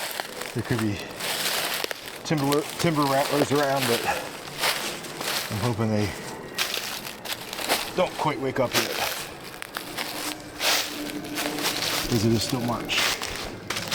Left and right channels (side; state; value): both; identical; correlation 1.00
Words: there could be timber rattlers around, but I'm hoping they don't quite wake up yet, because it is still March.